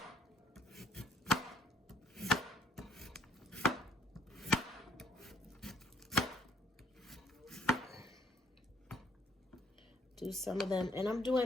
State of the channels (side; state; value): both; normal; correlation 0.64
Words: Do some of them, and I'm